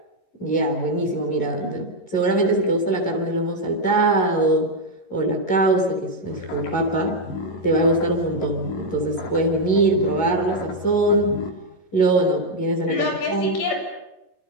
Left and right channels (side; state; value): right; late; 11 ms